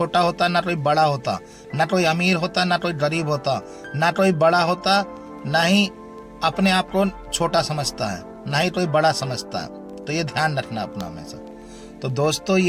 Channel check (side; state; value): both; identical; correlation 1.00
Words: होता, ना कोई बड़ा होता, ना कोई अमीर होता, ना कोई गरीब होता, ना कोई बड़ा होता, ना ही अपने आप को छोटा समझता है, ना ही कोई बड़ा समझता है। तो ये ध्यान रखना अपना हमेशा। तो दोस्तों,